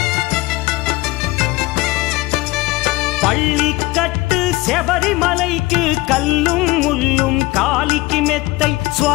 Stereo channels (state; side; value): quieter; right; 20.4 dB